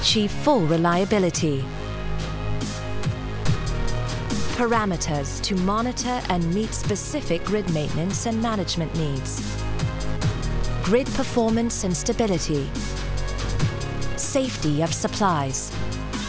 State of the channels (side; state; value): both; identical; correlation 1.00